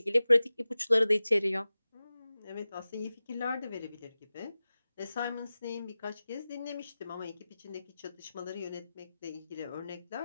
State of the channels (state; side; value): inverted; both; correlation -0.96